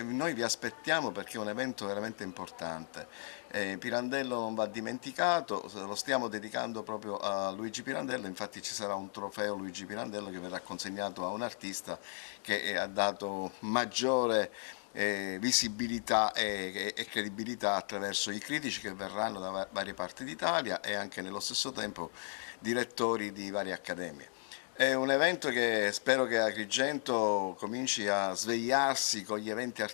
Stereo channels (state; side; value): silent; right; 54 dB below the other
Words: Noi vi aspettiamo perché è un evento veramente importante. Pirandello non va dimenticato, lo stiamo dedicando proprio a Luigi Pirandello, infatti ci sarà un trofeo Luigi Pirandello che verrà consegnato a un artista che ha dato maggiore visibilità e credibilità attraverso i critici che verranno da varie parti d'Italia e anche nello stesso tempo direttori di varie accademie. È un evento che spero che Agrigento cominci a svegliarsi con gli eventi